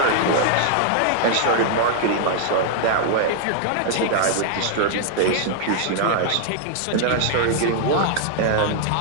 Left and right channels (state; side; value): different; both; correlation -0.01